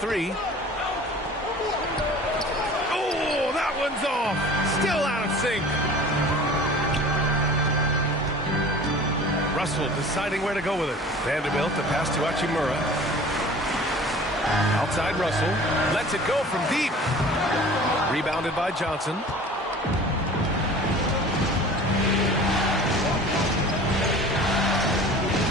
Oh, that one's off. Still out of sync. Russell deciding where to go with it. Vanderbilt to pass to Hachimura. Outside Russell. Lets it go from deep. Rebounded by Johnson.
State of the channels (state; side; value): normal; both; correlation 0.43